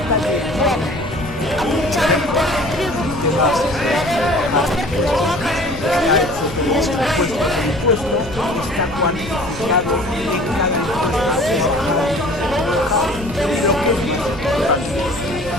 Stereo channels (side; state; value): left; noise; rumble, 13 dB below the sound